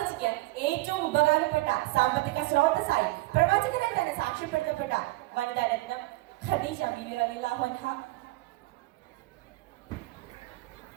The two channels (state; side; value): quieter; left; 20.7 dB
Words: ഏറ്റവും ഉപകാരപ്പെട്ട സാമ്പത്തിക സ്രോതസ്സായി പ്രവാചകനാൽ തന്നെ സാക്ഷ്യപ്പെടുത്തപ്പെട്ട വനിതാരത്നം ഖദീജ റളിയല്ലാഹു അൻഹ.